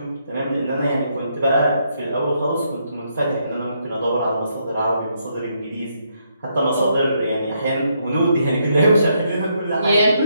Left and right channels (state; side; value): inverted; both; correlation -0.76